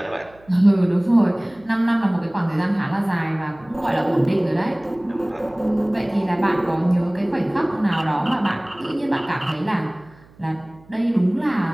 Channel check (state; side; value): noise; right; hum, 27 dB below the sound